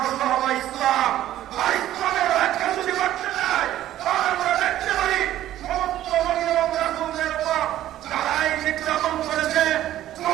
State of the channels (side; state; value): left; quieter; 13.1 dB